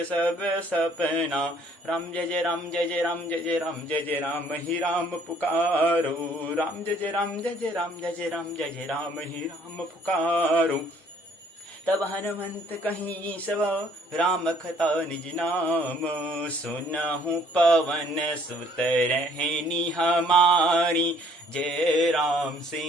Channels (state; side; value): normal; both; correlation 0.60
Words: सब सपना। राम जय जय राम जय जय राम जय जय राम जय जय राम ही राम पुकारो, राम जय जय राम जय जय राम जय जय राम जय जय राम ही राम पुकारो, तब हनुमंत कहीं सब, राम कथा निज नाम, सुनहु पवन सुत रहनी हमारी, जय राम